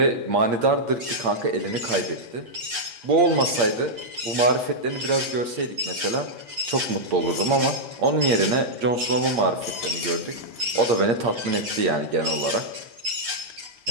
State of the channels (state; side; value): late; left; 8.5 ms